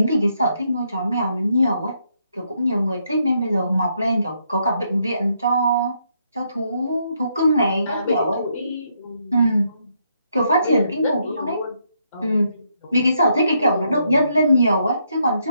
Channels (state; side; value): inverted; both; correlation -0.76